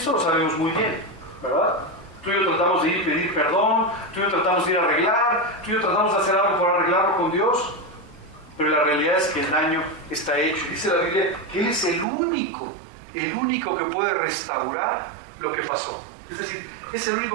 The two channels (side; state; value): left; drops out; at 12.1 s